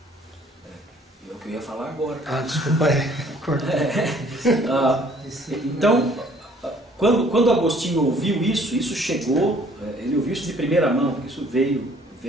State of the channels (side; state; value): both; normal; correlation 0.58